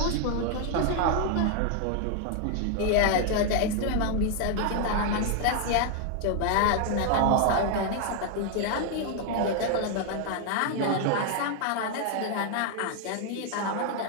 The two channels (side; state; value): both; different; correlation 0.00